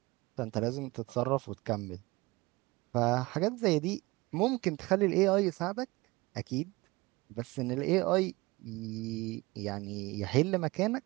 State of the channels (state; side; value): quieter; left; 22.5 dB